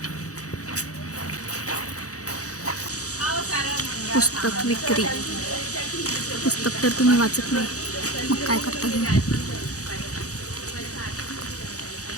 पुस्तक विक्री. पुस्तक तर तुम्ही वाचत नाही, मग काय करता घेऊन.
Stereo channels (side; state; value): right; late; 0.66 ms